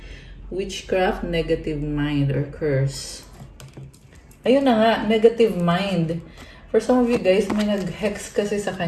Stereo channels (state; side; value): identical; both; correlation 1.00